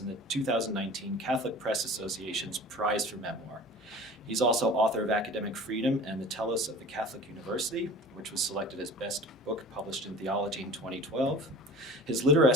the 2019 Catholic Press Association's Prize for Memoir. He's also author of Academic Freedom and the Telos of the Catholic University, which was selected as Best Book Published in Theology in 2012. His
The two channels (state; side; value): normal; both; correlation 0.40